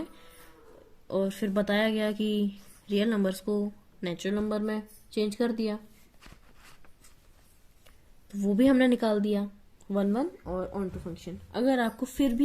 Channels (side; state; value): both; identical; correlation 1.00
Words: और फिर बताया गया कि रियल नंबर्स को नेचुरल नंबर में चेंज कर दिया, तो वो भी हमने निकाल दिया 1 और ऑन टू फंक्शन। अगर आपको फिर